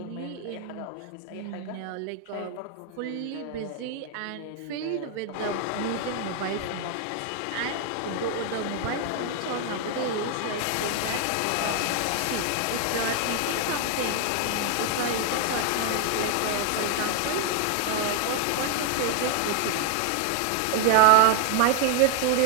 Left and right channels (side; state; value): both; different; correlation 0.00